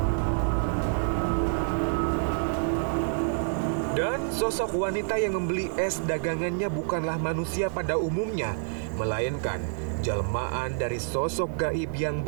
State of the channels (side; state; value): left; silent; digital silence